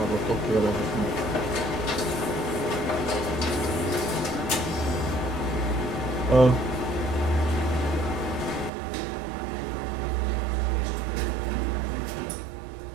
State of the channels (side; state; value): left; drops out; at 8.7 s